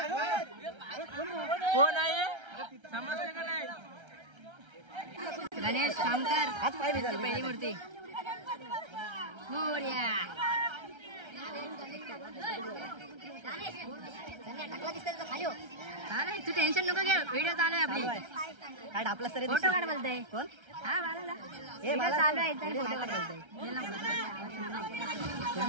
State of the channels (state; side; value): late; left; 1.3 ms